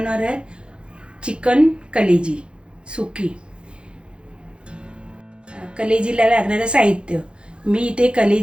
आहे चिकन कलेजी सुकी। कलेजीला लागणारं साहित्य, मी इथे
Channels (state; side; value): late; left; 0.055 ms